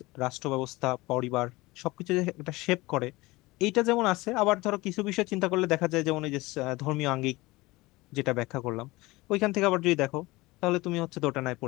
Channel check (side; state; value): right; quieter; 21.2 dB